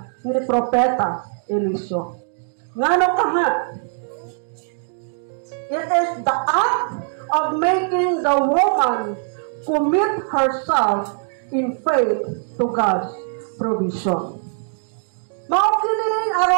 ni Propeta Eliseo. Ngano ka ha? It is the act of making the woman commit herself in faith to God's provision. Maukinin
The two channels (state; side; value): silent; left; digital silence